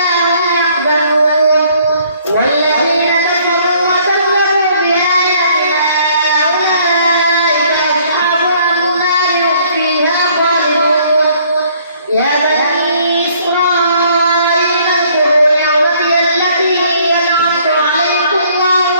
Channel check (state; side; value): inverted; both; correlation -0.61